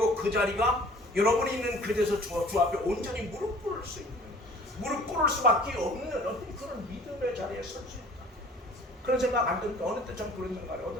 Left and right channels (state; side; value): normal; both; correlation 0.49